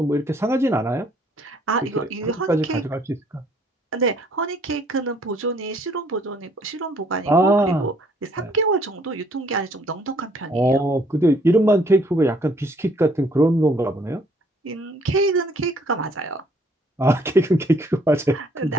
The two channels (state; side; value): normal; both; correlation 0.63